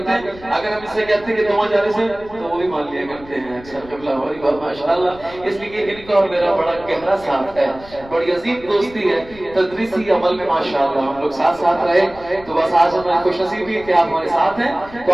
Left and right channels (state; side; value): noise; left; rumble, 20 dB below the sound